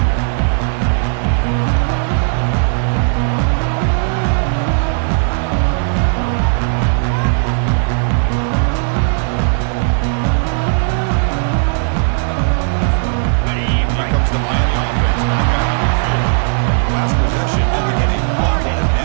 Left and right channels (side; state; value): left; silent; 65 dB below the other